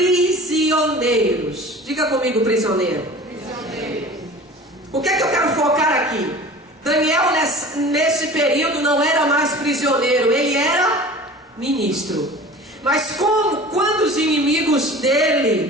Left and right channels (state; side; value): normal; both; correlation 0.40